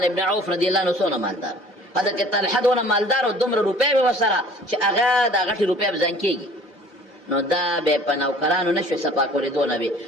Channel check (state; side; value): normal; both; correlation 0.50